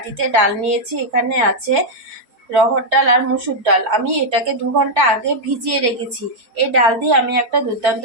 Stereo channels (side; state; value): left; late; 4.6 ms